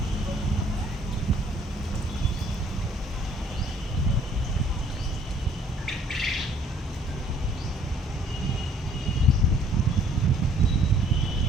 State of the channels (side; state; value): both; normal; correlation 0.60